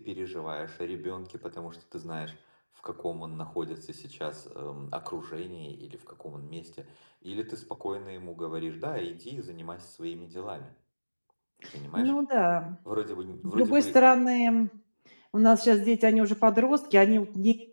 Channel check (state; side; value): inverted; both; correlation -1.00